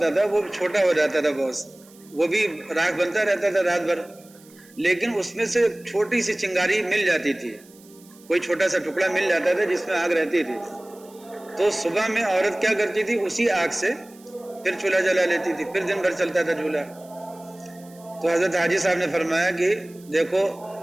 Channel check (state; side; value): noise; right; hiss, 26 dB below the sound